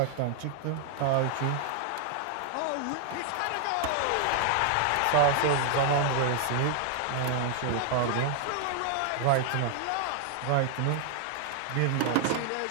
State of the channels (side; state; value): both; different; correlation 0.00